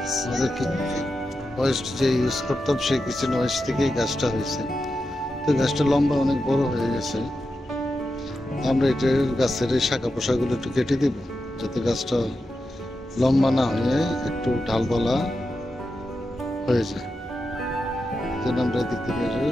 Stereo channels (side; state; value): both; normal; correlation 0.89